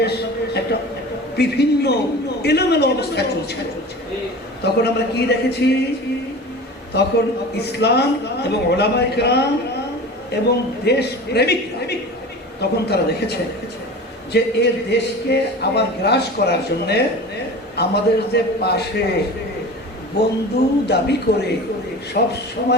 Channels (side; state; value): both; normal; correlation 0.35